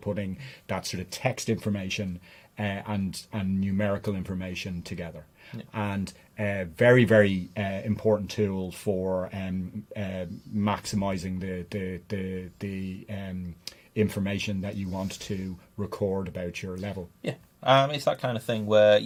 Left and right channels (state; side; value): identical; both; correlation 1.00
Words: that sort of text information and numerical information together, and very, very important tool for maximizing the information that you want to record about your level. Yeah. It's that kind of thing where